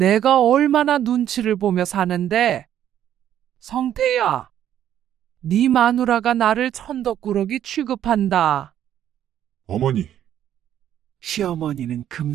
얼마나 눈치를 보며 사는데. 성태야, 네 마누라가 나를 천덕꾸러기 취급한다. 어머니, 시어머니는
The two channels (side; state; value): left; quieter; 10.8 dB